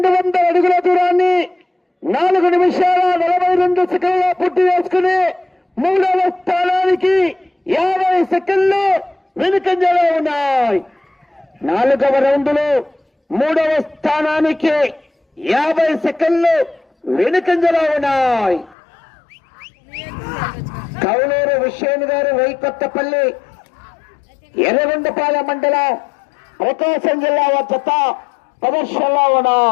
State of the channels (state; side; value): drops out; right; at 18.8 s